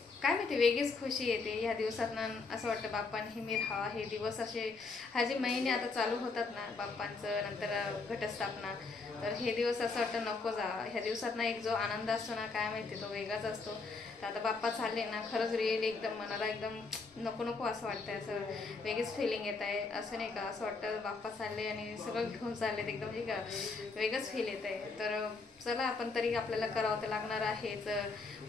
काय माहिती वेगळीच खुशी येते ह्या दिवसातनं। असं वाटतं बाप्पा नेहमी राहावा। हे दिवस असे हा जे महिने आता चालू होतात ना बाप्पांचं, नंतर घटस्थापना, तर हे दिवस असं वाटतं नको जावा। ह्या दिवसात ना एक जो आनंद असतो ना काय माहिती तो वेगळाच असतो। तर आता बाप्पा चालले ना खरंच रिअली एकदम मनाला एकदम नको नको असं वाटतंय। असं वेगळीच फिलिंग येत आहे। असं नाही का असं वाटतं बाप्पा चालले आणि सगळं घेऊन चाललेत, एकदम म्हणजे का वेगळंच फील येत आहे। तर चला आपण तरी आपल्याला करावं तर लागणार आहेच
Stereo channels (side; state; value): right; quieter; 4.2 dB